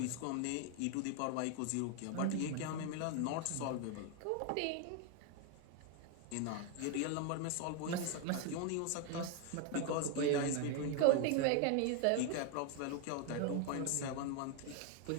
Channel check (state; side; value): different; both; correlation 0.01